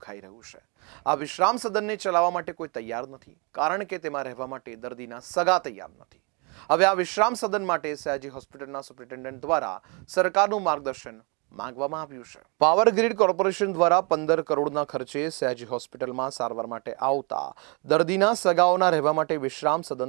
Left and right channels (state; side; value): quieter; left; 32.2 dB